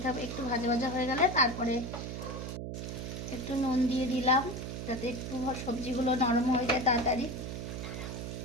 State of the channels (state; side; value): noise; right; hum, 6 dB below the sound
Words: থাকবে। একটু ভাজা ভাজা হয়ে গেলে তারপরে একটু নুন দিয়ে দিলাম, যাতে একটু সবজিগুলো নরম হয়ে যায় তাড়াতাড়ি।